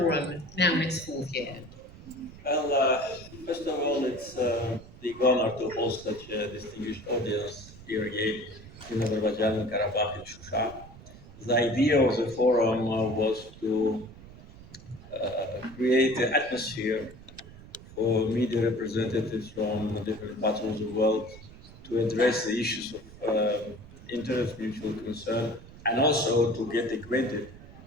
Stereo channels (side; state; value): right; noise; rumble, 18 dB below the sound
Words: now in its fourth year? Well, first of all, it's a big honor to host such a distinguished audience here again in Azerbaijan and Karabakh in Shusha. The idea of the forum was to create an atmosphere for media representatives from different parts of the world to address the issues of interest, mutual concern, and also to get acquainted